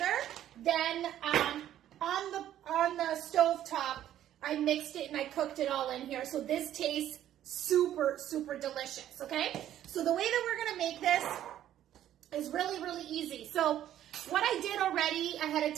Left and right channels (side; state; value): left; quieter; 11.8 dB